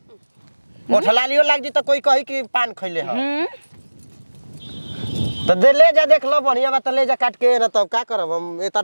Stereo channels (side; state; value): both; inverted; correlation -1.00